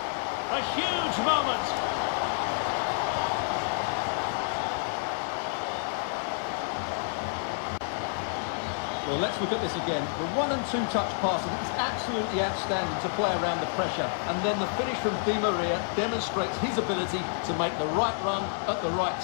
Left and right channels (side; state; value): right; silent; 59 dB below the other